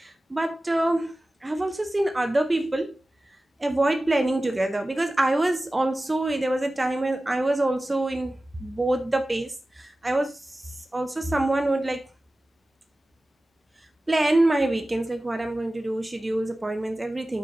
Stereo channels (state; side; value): normal; both; correlation 0.96